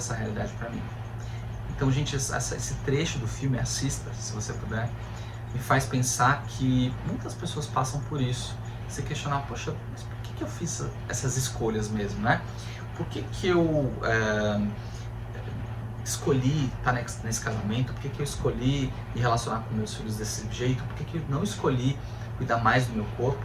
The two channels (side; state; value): both; identical; correlation 1.00